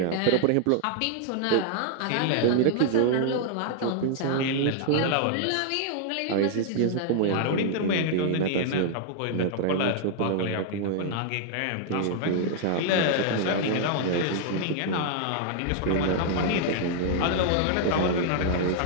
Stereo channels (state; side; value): different; both; correlation -0.01